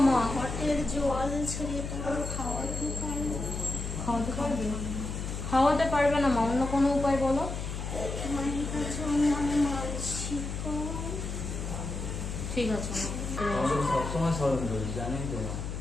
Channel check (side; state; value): left; noise; hum, 5 dB below the sound